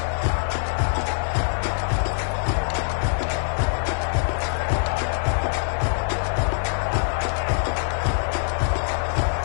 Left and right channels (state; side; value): silent; right; digital silence